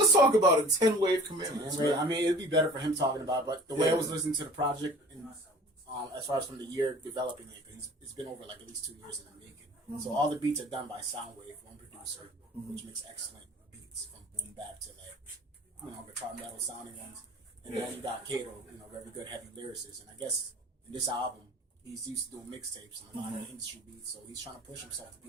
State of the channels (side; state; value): both; normal; correlation 0.45